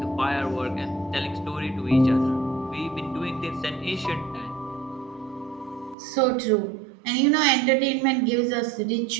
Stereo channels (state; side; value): drops out; left; at 6.0 s